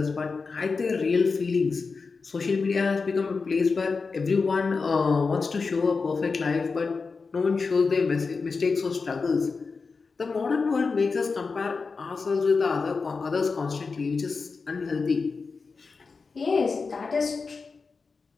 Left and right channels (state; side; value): quieter; right; 4.6 dB